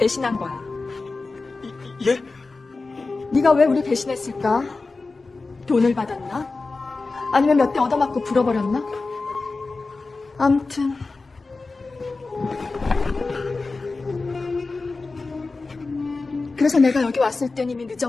거야. 예? 네가 왜 우리 배신했을까? 돈을 받았나? 아니면 몇 대 얻어맞고 불어버렸나? 암튼 그래서 내가 여기 왔을 땐 이미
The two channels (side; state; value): right; quieter; 3.8 dB